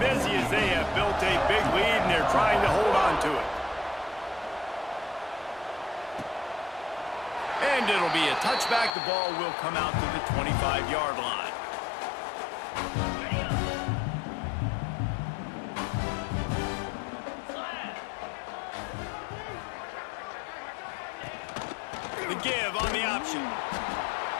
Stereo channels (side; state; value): right; drops out; at 9.0 s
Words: busy as they have built a big lead, and they're trying to hold on to it. And it'll be a touchback. The ball will come out to the 25-yard line. The give on the option.